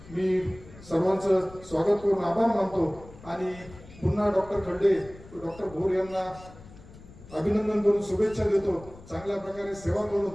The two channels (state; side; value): noise; left; rumble, 19 dB below the sound